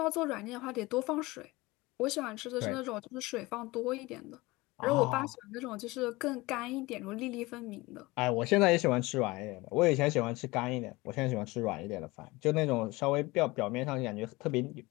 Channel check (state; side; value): quieter; right; 21.9 dB